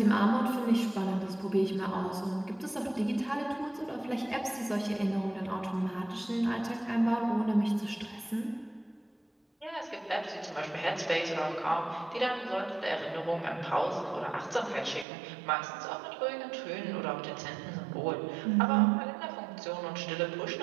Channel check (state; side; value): drops out; left; at 15.1 s